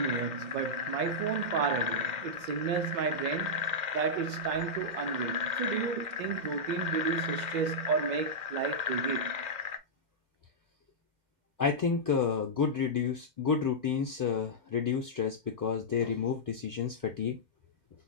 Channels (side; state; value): left; late; 2.1 ms